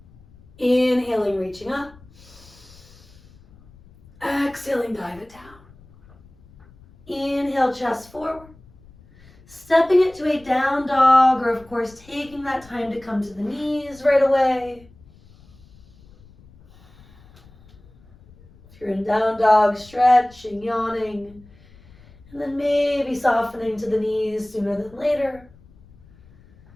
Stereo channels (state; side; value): noise; left; rumble, 26 dB below the sound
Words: Inhaling, reaching up. Exhaling, dive it down. Inhale, chest forward. Stepping it to a down dog, or of course taking that time to come to the knees right away. If you're in down dog, stretching, yawning, and then maybe softening to the knees sooner than later.